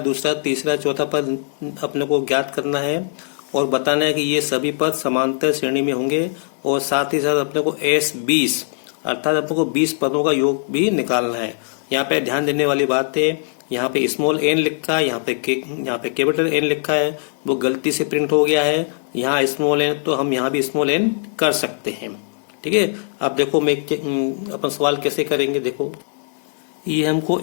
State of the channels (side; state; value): right; silent; digital silence